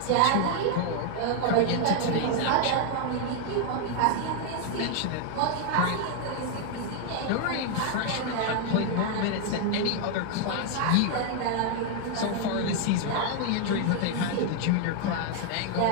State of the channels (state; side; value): different; both; correlation 0.00